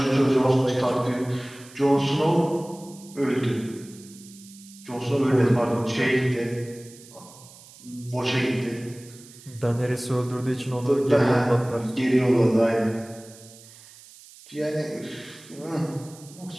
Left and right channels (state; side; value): noise; right; hiss, 21 dB below the sound